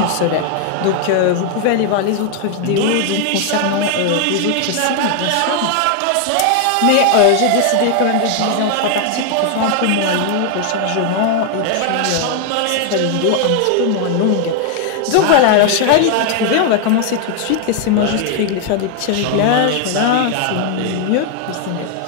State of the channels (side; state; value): both; different; correlation 0.00